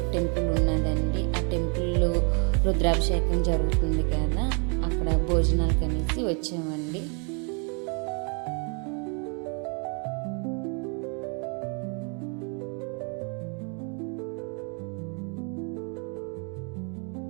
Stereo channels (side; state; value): left; quieter; 37.3 dB